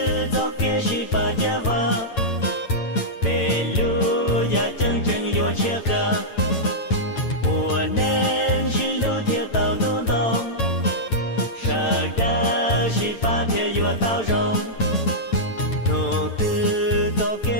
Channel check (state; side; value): late; right; 9.0 ms